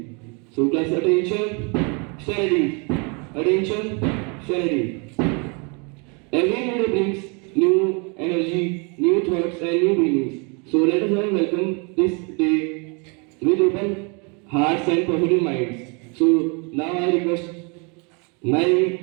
So class attention, studies. Attention, studies. Every new day brings new energy, new thoughts, and new feelings. So let us all welcome this day with open hearts and positive minds. So now I request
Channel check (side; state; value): left; quieter; 33.1 dB